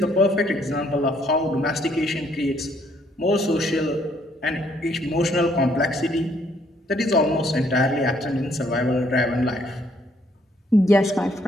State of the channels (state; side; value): normal; both; correlation 0.67